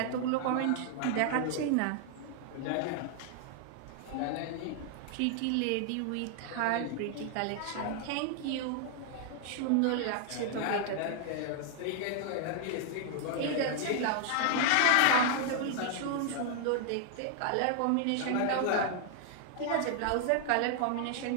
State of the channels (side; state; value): both; different; correlation 0.00